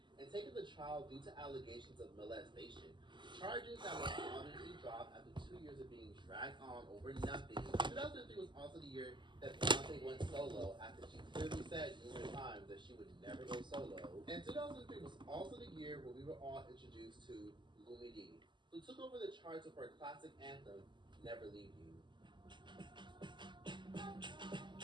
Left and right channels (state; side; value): late; left; 0.22 ms